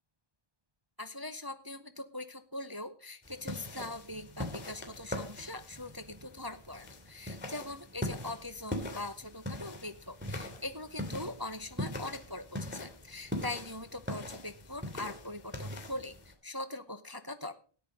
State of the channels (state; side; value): late; left; 1.0 ms